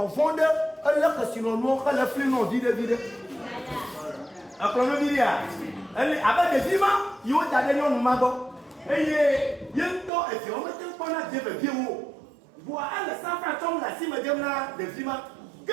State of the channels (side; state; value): left; drops out; at 10.1 s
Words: fond elle la que sinon nous elle a flé non vide après le vidéo elle avec des vivants il y a des gens nous mago. Et il y a un temps, et si on met un peu de vieux, voir un 100 francs comme la cime de la de Vima, que